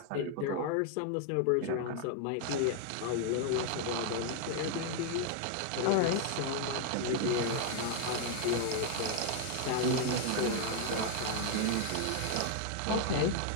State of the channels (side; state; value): both; different; correlation 0.00